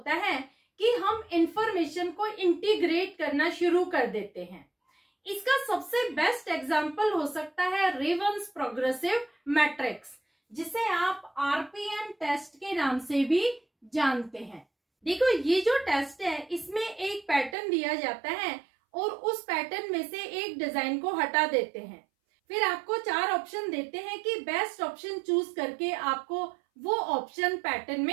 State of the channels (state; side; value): drops out; left; at 17.6 s